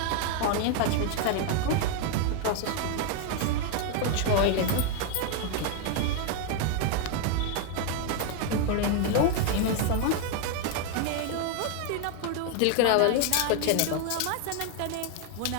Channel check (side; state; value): both; different; correlation 0.01